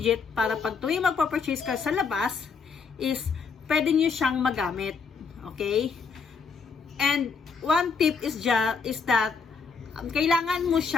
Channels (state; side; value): quieter; right; 5.3 dB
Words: para pag tuwing magpa-purchase ka sa labas is pwede nyo siyang magamit. Okay? And one tip is that kailangan mo